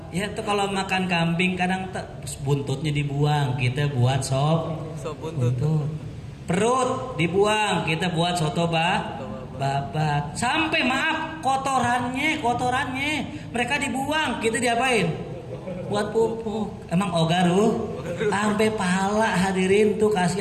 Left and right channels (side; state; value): both; identical; correlation 1.00